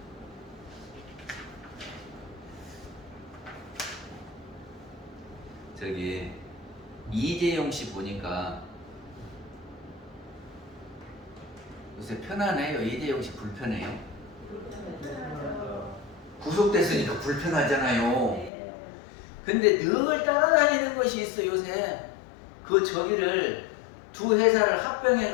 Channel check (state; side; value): drops out; right; at 18.5 s